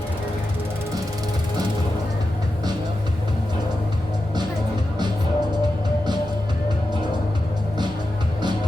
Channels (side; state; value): both; normal; correlation 0.90